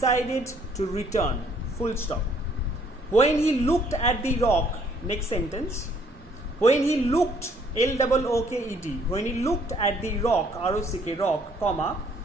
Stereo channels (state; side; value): normal; both; correlation 0.63